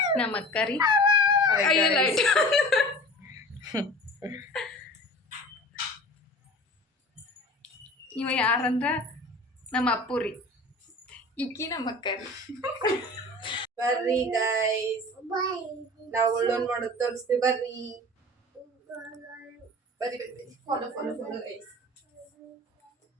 ನಮ್ಮ ಅಕ್ಕ ರೀ. ಇವ ಯಾರಂದ್ರ ನಮ್ಮ ಅಪ್ಪು ರೀ, ಈಕಿ ನಮ್ಮ ಅಕ್ಕ ರೀ. ಬರ್ರಿ ಗೈಸ್, ನಾವು ಒಳ್ಳೊಂದ್ ಮಾಡೋದು ತೋರಿಸ್ತೀವಿ. ಬರ್ರಿ ಬರ್ರಿ ಬರ್ರಿ, follow follow follow guys.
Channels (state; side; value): normal; both; correlation 0.39